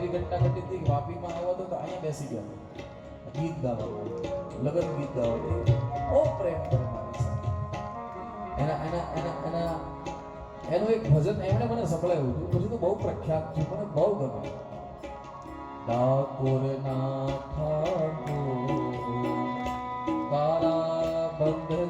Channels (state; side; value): identical; both; correlation 1.00